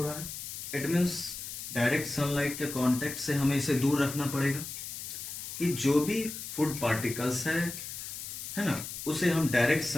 रहा है, इट मीन्स डायरेक्ट सनलाइट के कांटेक्ट से हमें इसे दूर रखना पड़ेगा कि जो भी फूड पार्टिकल्स है ना, उसे हम डायरेक्ट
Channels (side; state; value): left; noise; hiss, 8 dB below the sound